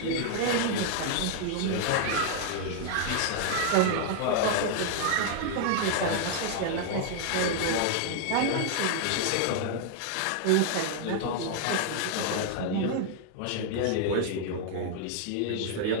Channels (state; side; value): different; both; correlation 0.00